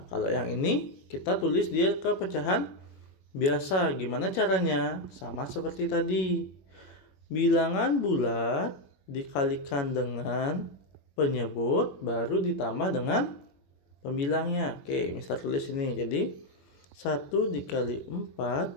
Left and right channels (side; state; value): right; late; 21 ms